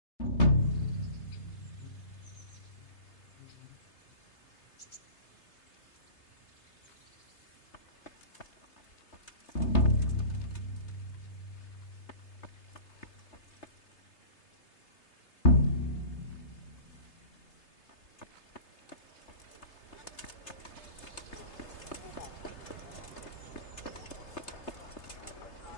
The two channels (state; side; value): late; right; 3.3 ms